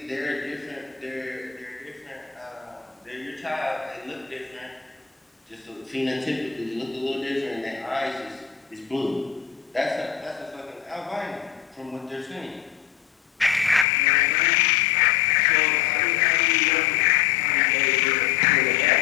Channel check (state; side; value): drops out; right; at 13.9 s